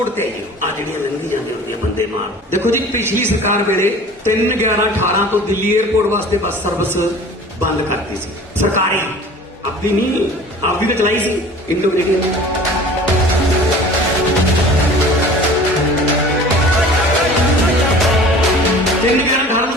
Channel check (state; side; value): normal; both; correlation 0.44